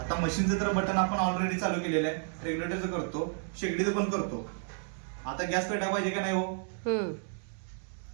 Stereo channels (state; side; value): silent; left; 57 dB below the other